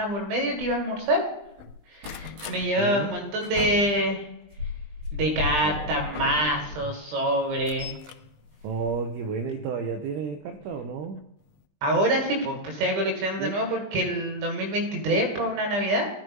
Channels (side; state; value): left; late; 19 ms